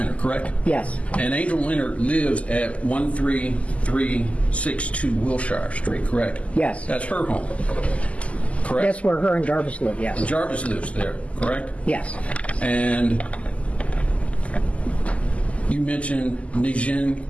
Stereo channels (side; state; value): right; late; 0.065 ms